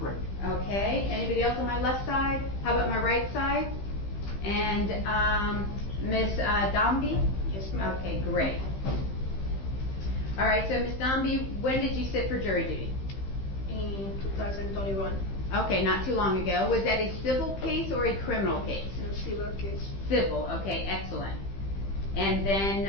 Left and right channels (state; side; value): late; right; 15 ms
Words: Okay, anybody else on my left side? How about my right side? And Ms. Dombey? Yes, ma'am. Okay, great. All right, so Ms. Dombey, when did you sit for jury duty? In 2021, Okay, not too long ago. Was that a civil case or a criminal case? in a civil case. Civil, okay, excellent. And then,